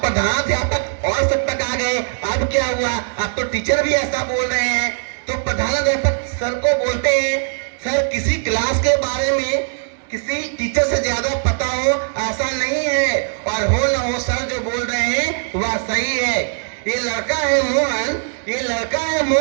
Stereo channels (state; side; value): silent; left; 63 dB below the other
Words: प्रधानाध्यापक और शिक्षक आ गए, अब क्या हुआ? अब तो टीचर भी ऐसा बोल रहे हैं। तो प्रधानाध्यापक सर को बोलते हैं, सर किसी क्लास के बारे में किसी टीचर से ज्यादा पता हो ऐसा नहीं है, और हो न हो सर जो बोल रहे हैं वह सही है। ये लड़का है मोहन, ये लड़का है